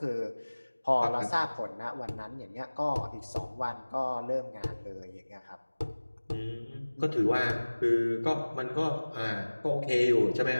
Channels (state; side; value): inverted; both; correlation -1.00